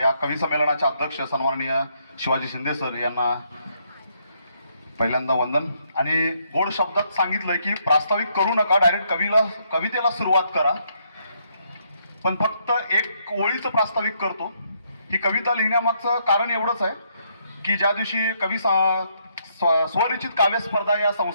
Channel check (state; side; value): inverted; both; correlation -0.73